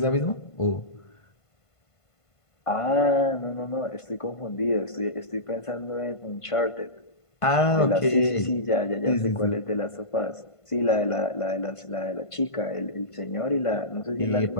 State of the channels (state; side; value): late; right; 1.5 ms